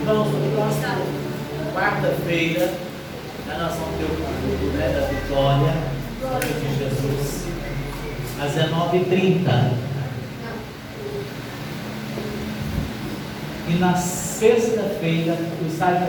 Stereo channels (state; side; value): identical; both; correlation 1.00